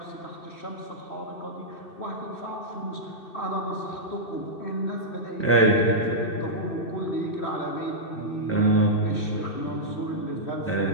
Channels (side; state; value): right; late; 2.6 ms